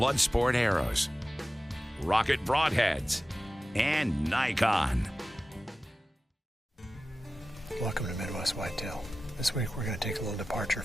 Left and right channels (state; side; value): normal; both; correlation 0.94